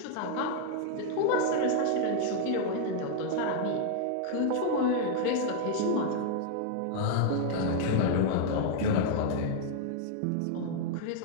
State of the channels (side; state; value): both; different; correlation 0.00